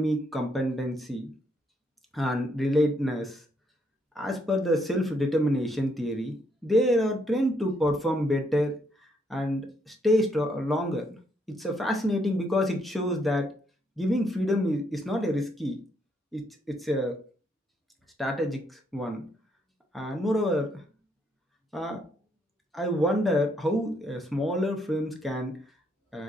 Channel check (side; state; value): both; normal; correlation 0.73